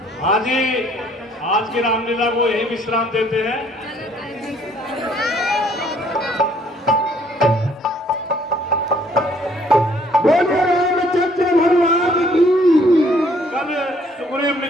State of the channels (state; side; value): normal; both; correlation 0.62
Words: हाँ जी, आज की रामलीला को यही विश्राम देते हैं।